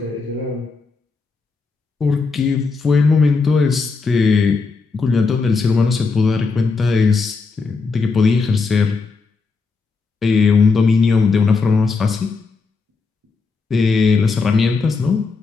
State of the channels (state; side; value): quieter; right; 4.4 dB